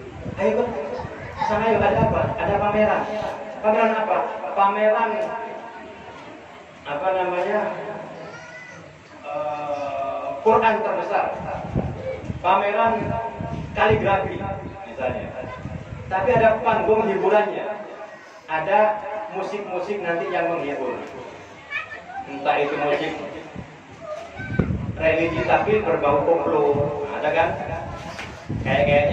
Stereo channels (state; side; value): identical; both; correlation 1.00